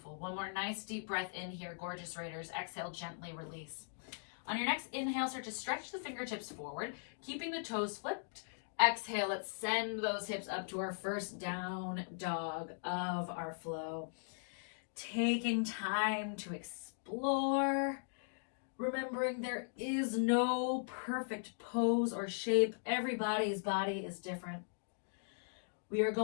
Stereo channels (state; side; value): silent; right; digital silence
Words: One more nice deep breath in here, gorgeous Raiders. Exhale, gently release. On your next inhale, start to stretch the fingertips forward, keeping the toes flipped. Exhale, let's send those hips up to our first down dog of our flow. Taking time to explore, remembering there is no perfect pose or shape. Everybody's body is different. We are